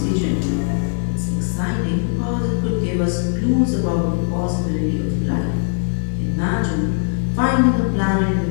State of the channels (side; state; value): right; silent; digital silence